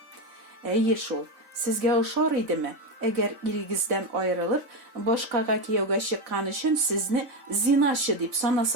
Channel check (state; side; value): late; left; 3.7 ms